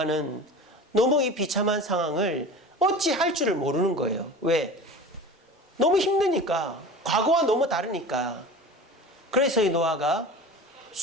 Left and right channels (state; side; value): normal; both; correlation 0.36